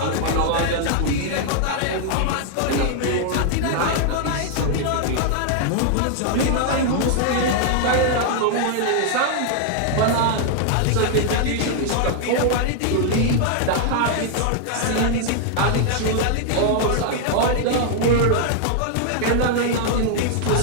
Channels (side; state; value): both; different; correlation 0.00